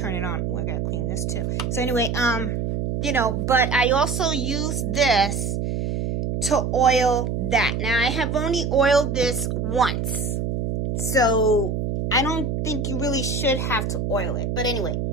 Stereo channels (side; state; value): right; noise; hum, 1 dB below the sound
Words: it on. Oh, I gotta clean this too. So anyway, you know, but I also use this to oil that. Now, I have only oiled this once, so I don't think you really should have to oil it. But anyway,